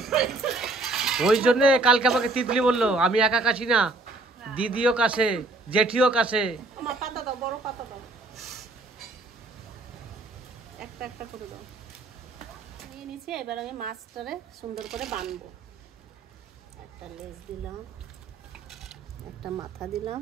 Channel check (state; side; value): quieter; left; 3.1 dB